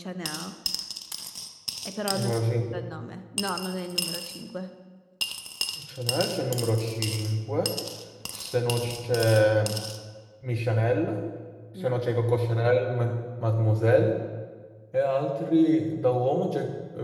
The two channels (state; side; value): identical; both; correlation 1.00